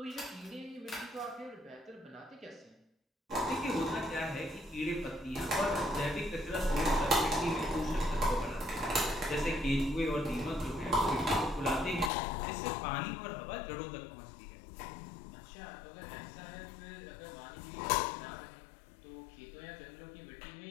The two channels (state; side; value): drops out; right; at 12.1 s